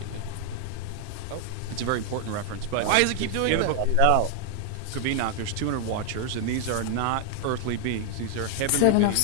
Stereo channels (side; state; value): both; different; correlation 0.00